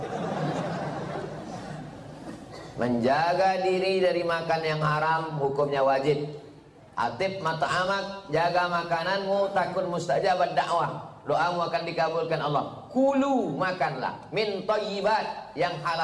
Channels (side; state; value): both; identical; correlation 1.00